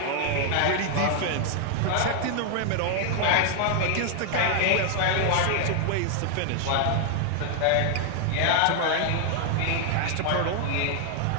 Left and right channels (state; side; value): different; both; correlation 0.00